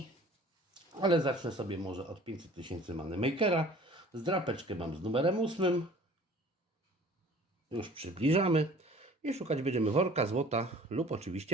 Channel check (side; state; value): both; normal; correlation 0.49